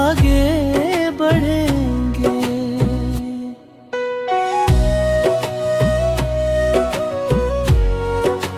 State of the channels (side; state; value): both; identical; correlation 1.00